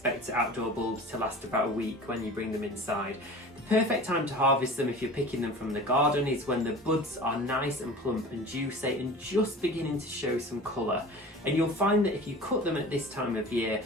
outdoor bulbs to last about a week when you bring them inside. The perfect time to harvest them if you're picking them from the garden is when the buds are nice and plump and juicy and just beginning to show some colour. And you'll find that if you cut them at this time of year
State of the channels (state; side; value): normal; both; correlation 0.38